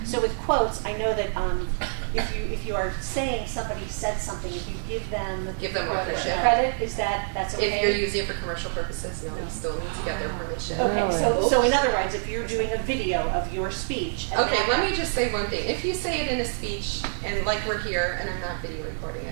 so with quotes, I know that if you are saying somebody said something, if you give them credit, that's okay? If you're using it for commercial purposes, no, you still need to get their permission. Okay, so in other words, if you're doing a video of your speech. Okay, let me just say one thing. If you say it in a speech, and like we're here, and I'm not video recording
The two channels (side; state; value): left; silent; digital silence